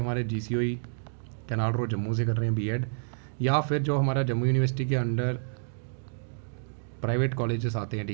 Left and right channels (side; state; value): left; silent; digital silence